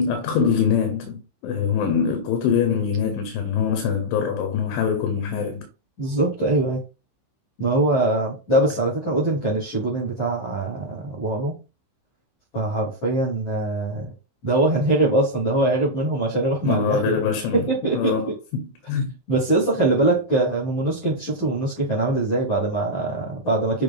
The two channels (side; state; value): right; late; 15 ms